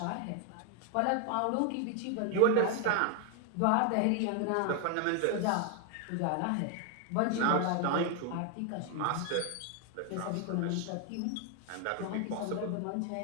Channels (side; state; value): both; different; correlation 0.00